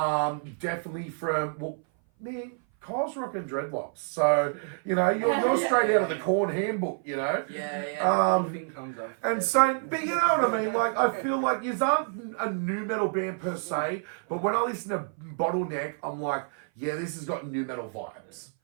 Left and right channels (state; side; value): silent; left; 57 dB below the other